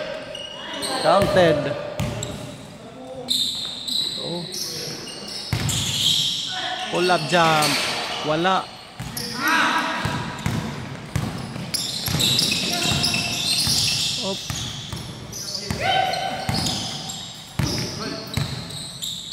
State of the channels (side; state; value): both; identical; correlation 1.00